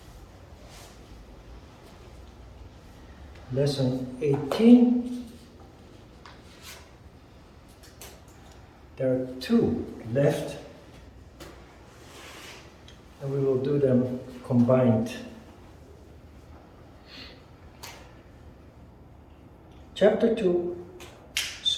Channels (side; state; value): both; identical; correlation 1.00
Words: Lesson 18. There are 2 left, and we will do them combined. Chapter 2,